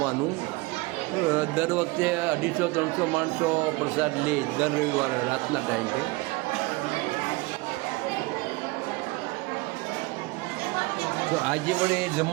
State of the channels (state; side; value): quieter; left; 23.4 dB